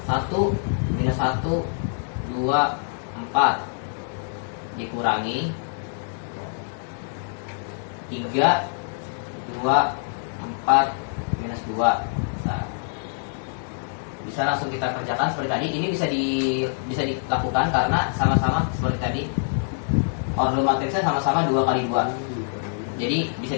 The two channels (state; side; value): silent; right; digital silence